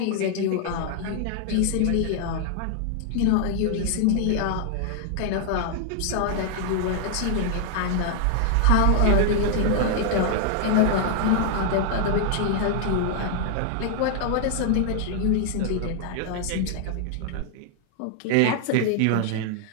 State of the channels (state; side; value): different; both; correlation 0.00